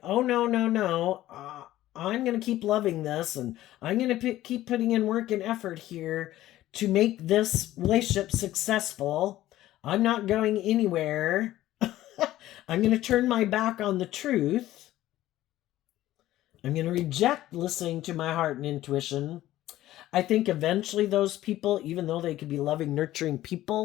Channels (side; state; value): right; quieter; 14.7 dB